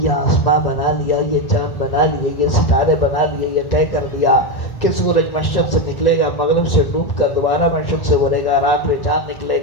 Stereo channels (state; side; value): late; right; 1.1 ms